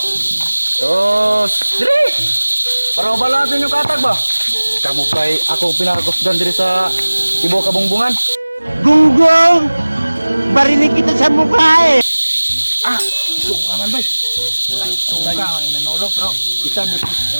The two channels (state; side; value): inverted; both; correlation -1.00